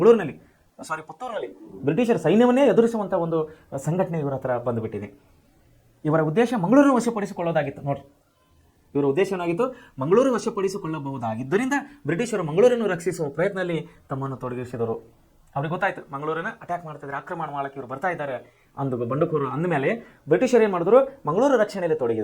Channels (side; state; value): both; identical; correlation 1.00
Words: ಪುತ್ತೂರಿನಲ್ಲಿ ಬ್ರಿಟಿಷರ ಸೈನ್ಯವನ್ನೇ ಎದುರಿಸುವಂಥ ಒಂದು ಸಂಘಟನೆ ಇವರ ಹತ್ರ ಬಂದುಬಿಟ್ಟಿದೆ. ಇವರ ಉದ್ದೇಶ ಮಂಗಳೂರನ್ನು ವಶಪಡಿಸಿಕೊಳ್ಳೋದಾಗಿತ್ತು. ನೋಡಿ, ಇವರ ಉದ್ದೇಶ ಏನಾಗಿತ್ತು? ಮಂಗಳೂರು ವಶಪಡಿಸಿಕೊಳ್ಳಬಹುದಾಗಿದ್ದರಿಂದ ಬ್ರಿಟಿಷರು ಮಂಗಳೂರನ್ನು ರಕ್ಷಿಸುವ ಪ್ರಯತ್ನದಲ್ಲಿ ತಮ್ಮನ್ನು ತೊಡಗಿಸಿದರು. ಅವ್ರಿಗೆ ಗೊತ್ತಾಯ್ತು ಮಂಗಳೂರನ್ನು ಅಟ್ಯಾಕ್ ಮಾಡ್ತಿದ್ದಾರೆ, ಆಕ್ರಮಣ ಮಾಡಕ್ಕೆ ಇವರು ಬರ್ತಾ ಇದ್ದಾರೆ ಬಂಡುಕೋರರು ಅಂದಮೇಲೆ ಬ್ರಿಟಿಷರು ಏನು ಮಾಡಿದ್ರು? ಮಂಗಳೂರು ರಕ್ಷಣೆಯಲ್ಲಿ